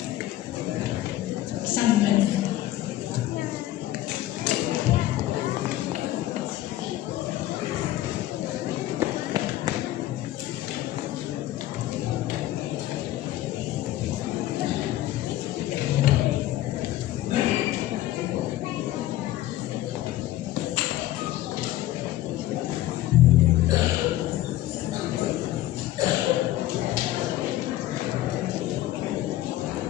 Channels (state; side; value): quieter; right; 14.5 dB